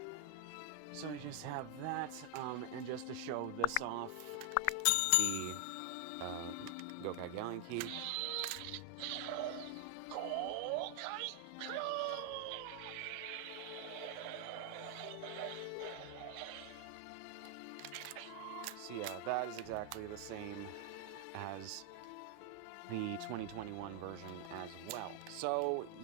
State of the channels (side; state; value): both; different; correlation 0.00